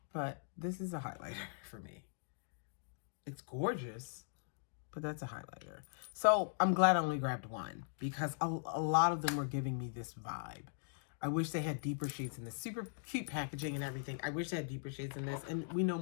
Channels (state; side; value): silent; right; digital silence